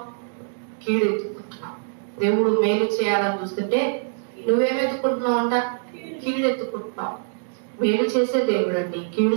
కీడెత్తుకుంటున్నావు. దేవుడు మేలు చేయాలని చూస్తుంటే నువ్వేమెత్తుకుంటున్నావు అంట? కీడెత్తుకుంటున్నావు. మేలు చేసే దేవుడు అండి, కీడు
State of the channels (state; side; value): silent; left; digital silence